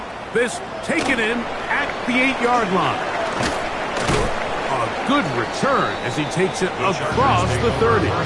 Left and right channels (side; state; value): both; identical; correlation 1.00